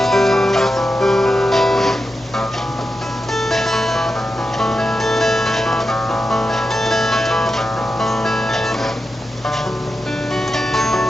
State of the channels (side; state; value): both; normal; correlation 0.89